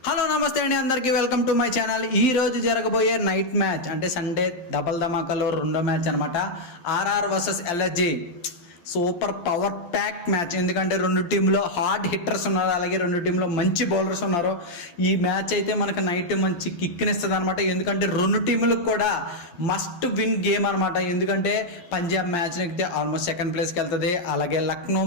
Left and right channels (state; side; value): late; right; 12 ms